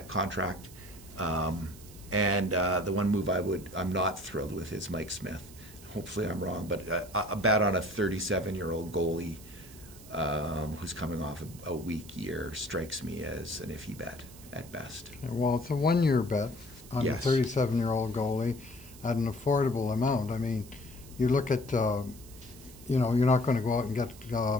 contract, and the one move I'm not thrilled with is Mike Smith. Hopefully I'm wrong, but a bet on a 37-year-old goalie who's coming off a weak year strikes me as an iffy bet at best. Well, it's a 1-year bet on Yes. a 37-year-old goalie at an affordable amount. I mean, you look at, you're not going to go out and get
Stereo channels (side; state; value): right; noise; hiss, 20 dB below the sound